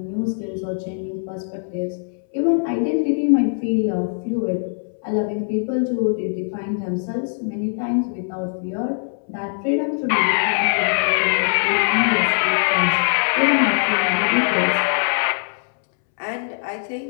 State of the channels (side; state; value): right; silent; 65 dB below the other